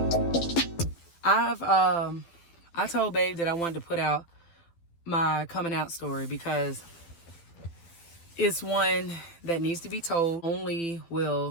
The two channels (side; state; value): right; late; 12 ms